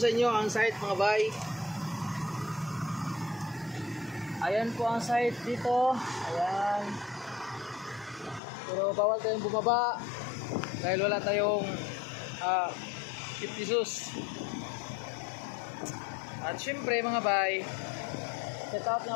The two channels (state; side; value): drops out; right; at 8.4 s